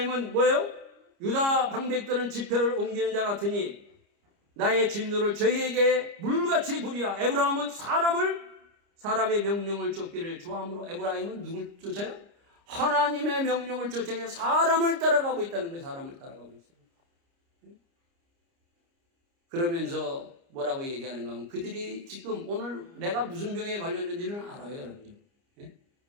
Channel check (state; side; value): late; left; 29 ms